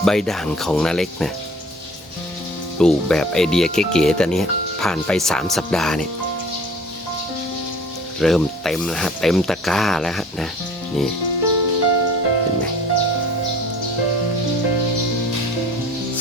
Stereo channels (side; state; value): both; normal; correlation 0.49